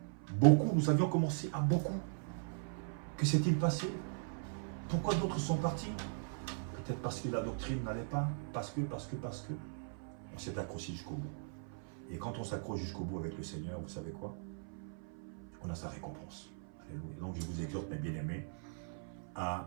Nous avions commencé à beaucoup. Que s'est-il passé? Pourquoi d'autres sont partis? Peut-être parce que la doctrine n'allait pas, parce que. On s'est accroché jusqu'au bout. Et quand on s'accroche jusqu'au bout avec le Seigneur, vous savez quoi? On a sa récompense. Alléluia. Donc je vous exhorte, mes bien-aimés,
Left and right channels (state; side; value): silent; left; 52 dB below the other